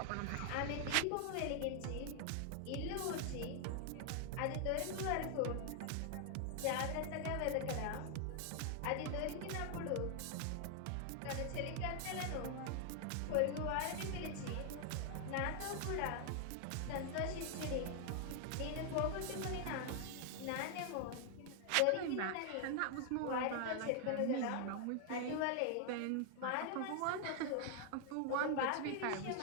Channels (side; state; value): both; different; correlation 0.00